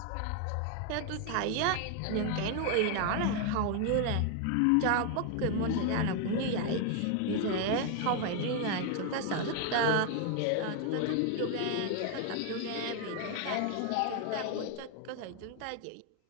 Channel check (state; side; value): different; both; correlation 0.01